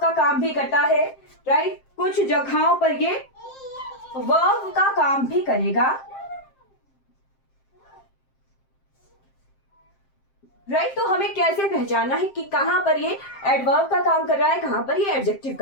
काम भी करता है, राइट। कुछ जगहों पर ये वर्ब का काम भी करेगा, राइट। तो हमें कैसे पहचानना है कि कहां पर ये एडवर्ब का काम कर रहा है, कहां पर ये एडजेक्टिव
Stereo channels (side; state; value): right; late; 7.6 ms